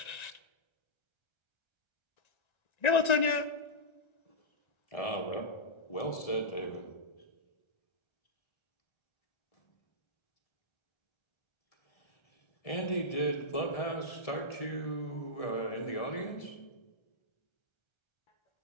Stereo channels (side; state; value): right; late; 1.9 ms